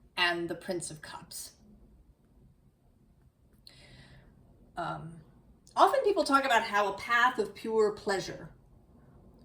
and the Prince of Cups. Often people talk about how a path of pure pleasure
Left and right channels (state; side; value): identical; both; correlation 1.00